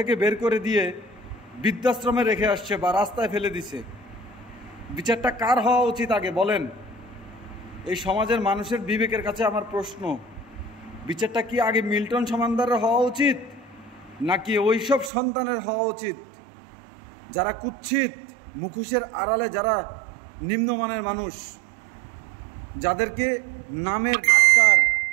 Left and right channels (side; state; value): left; drops out; at 15.1 s